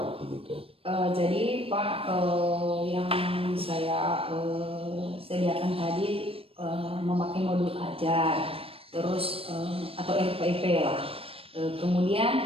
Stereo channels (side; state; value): left; late; 0.28 ms